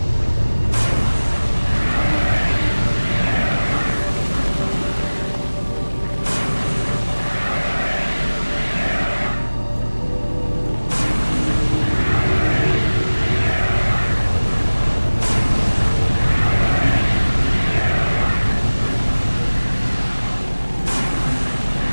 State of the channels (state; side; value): inverted; both; correlation -1.00